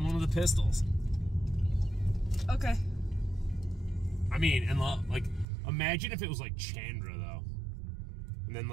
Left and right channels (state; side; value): drops out; left; at 5.5 s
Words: one of the pistols. Okay. I mean, and like, imagine if it was like Chandra though, and then